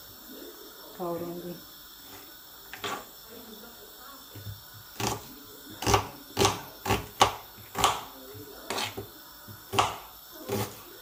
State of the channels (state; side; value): identical; both; correlation 1.00